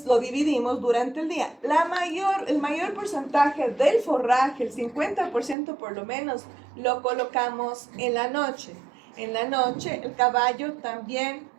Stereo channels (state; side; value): drops out; left; at 5.6 s